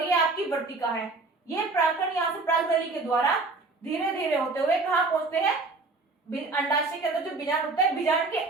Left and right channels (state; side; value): quieter; left; 3.6 dB